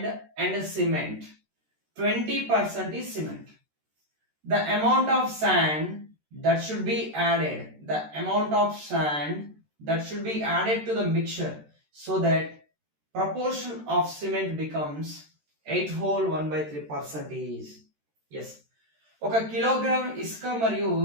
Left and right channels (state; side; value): late; left; 13 ms